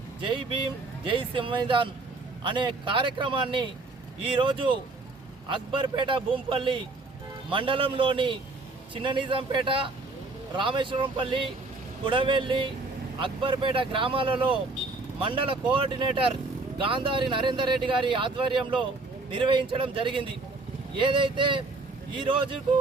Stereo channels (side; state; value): left; quieter; 3.4 dB